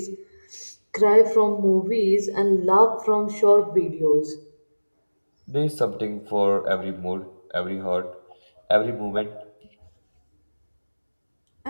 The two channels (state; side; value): inverted; both; correlation -1.00